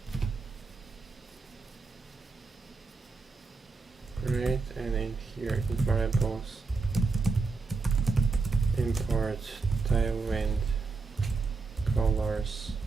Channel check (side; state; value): left; quieter; 4.2 dB